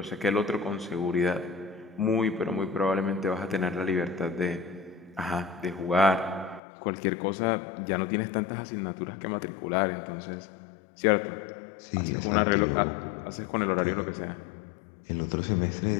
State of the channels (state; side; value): drops out; right; at 6.6 s